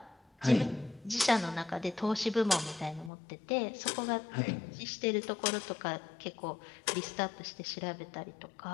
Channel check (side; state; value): right; drops out; at 3.1 s